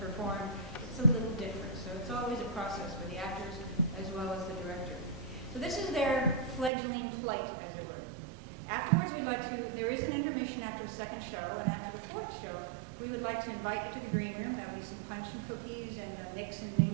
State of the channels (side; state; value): left; drops out; at 6.7 s